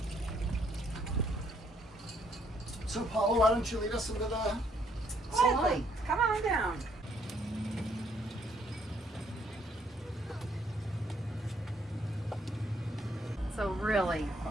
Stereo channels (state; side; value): normal; both; correlation 0.69